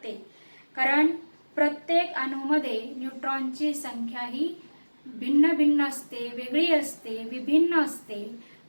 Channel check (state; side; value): inverted; both; correlation -1.00